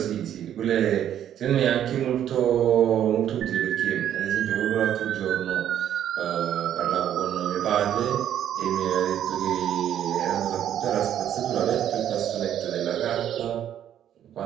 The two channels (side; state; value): left; quieter; 10.5 dB